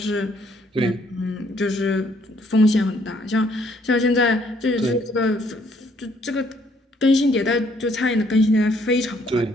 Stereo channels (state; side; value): normal; both; correlation 0.66